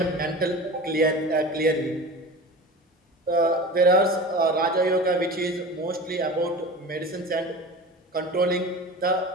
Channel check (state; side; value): normal; both; correlation 0.34